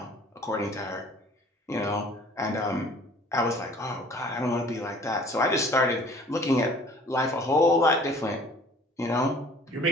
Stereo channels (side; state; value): both; normal; correlation 0.52